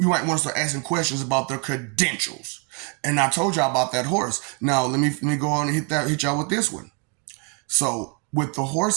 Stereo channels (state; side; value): quieter; left; 33.9 dB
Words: want to start asking questions about their credentials. And I told y'all about that horse. Now let me go on and hit y'all with this one. So with the